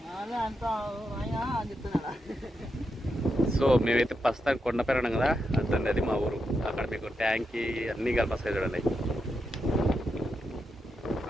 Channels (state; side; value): normal; both; correlation 0.85